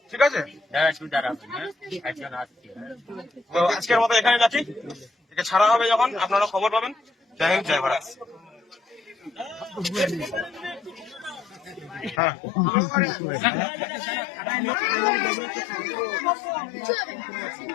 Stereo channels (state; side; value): drops out; right; at 12.2 s